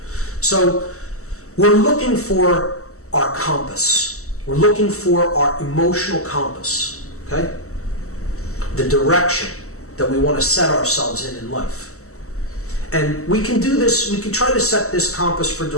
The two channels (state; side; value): late; right; 0.64 ms